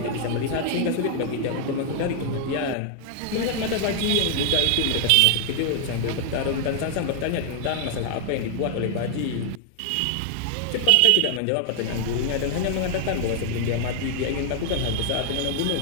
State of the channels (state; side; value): different; both; correlation 0.00